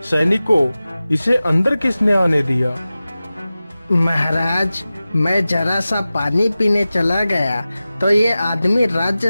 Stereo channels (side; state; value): both; inverted; correlation -0.96